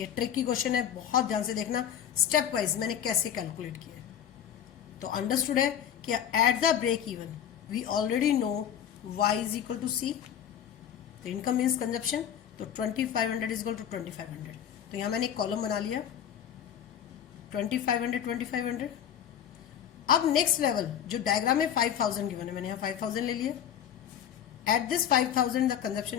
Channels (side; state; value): right; quieter; 9.5 dB